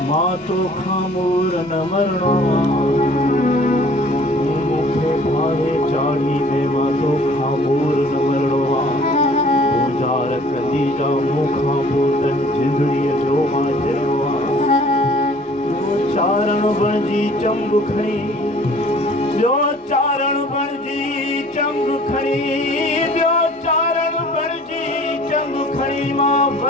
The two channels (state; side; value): normal; both; correlation 0.52